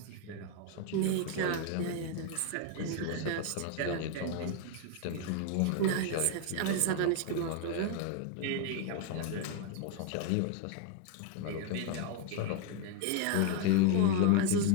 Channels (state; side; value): different; both; correlation 0.01